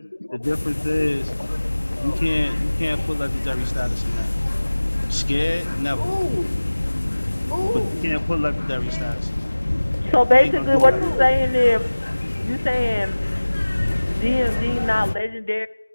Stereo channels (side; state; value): both; inverted; correlation -1.00